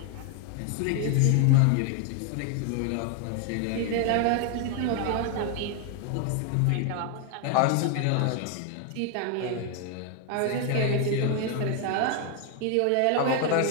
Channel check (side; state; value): both; different; correlation 0.00